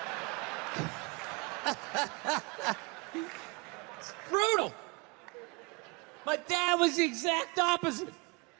It's brutal. My dad was the exact opposite.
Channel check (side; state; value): left; quieter; 28.1 dB